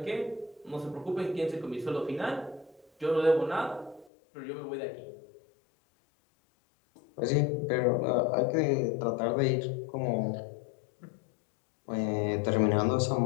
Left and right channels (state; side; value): drops out; right; at 4.1 s